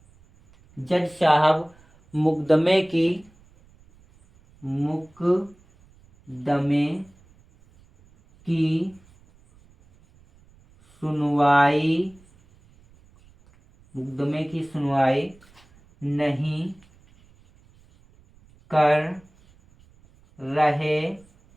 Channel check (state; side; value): noise; right; rumble, 29 dB below the sound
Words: जज साहब मुकदमे की, मुकदमे की सुनवाई, मुकदमे की सुनवाई नहीं कर रहे